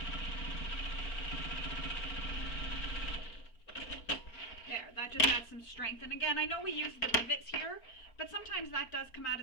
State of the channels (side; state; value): right; late; 4.4 ms